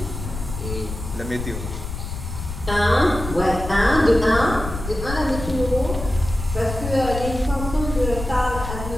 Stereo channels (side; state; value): left; noise; rumble, 7 dB below the sound